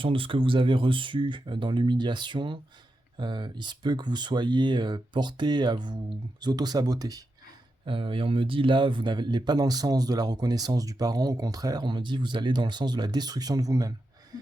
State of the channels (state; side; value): normal; both; correlation 0.88